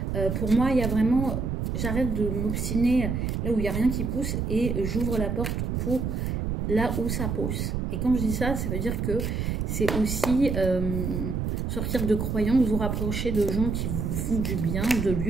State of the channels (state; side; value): noise; right; rumble, 1 dB below the sound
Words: pour moi, il y a vraiment, j'arrête de m'obstiner là où il n'y a rien qui pousse et j'ouvre la porte pour là où ça pousse. Et quand je dis ça, ça veut dire que c'est aussi sortir de croyances, vous rapprocher de gens qui vous font du bien, de